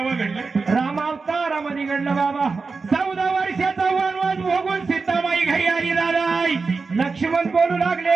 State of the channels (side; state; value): left; quieter; 4.4 dB